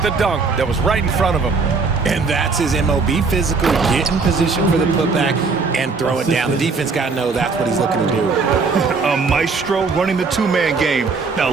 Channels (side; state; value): left; quieter; 4.5 dB